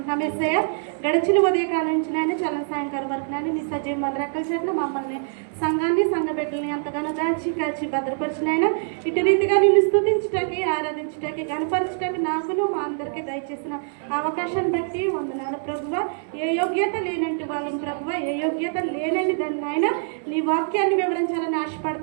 యేసయ్య, గడిచిన ఉదయకాలం నుంచి నాయన చలం సాయంకాలం వరకు నాయన నీ సజీవ రెక్కల చేత మమ్మల్ని సంఘాన్ని సంఘ బిడ్డల్ని ఎంతగానో దాచి కాచి భద్రపరిచినాయన ఇటు రీతిగా నిన్ను స్తుతించటానికి, ఆరాధించటానికి, గణపరచటానికి నాకును మా అందరికీ దయచేసిన అవకాశాన్ని బట్టి వందనాలు ప్రభువ. ఏ యోగ్యత లేనంటి వాళ్ళని ప్రభువ, ఏ యోగ్యత లేనని దాన్ని నాయన నీ వాక్యాన్ని వివరించాలని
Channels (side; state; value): left; silent; 62 dB below the other